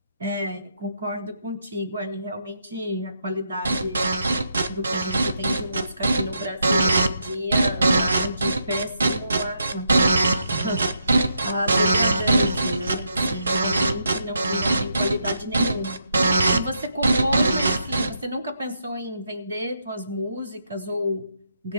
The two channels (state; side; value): inverted; both; correlation -0.80